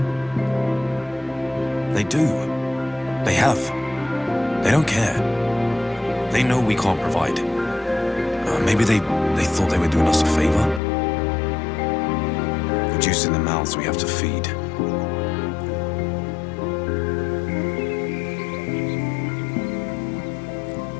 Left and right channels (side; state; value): right; drops out; at 10.8 s